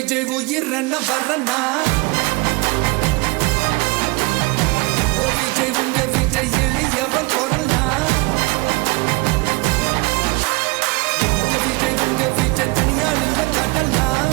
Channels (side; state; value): left; quieter; 25.2 dB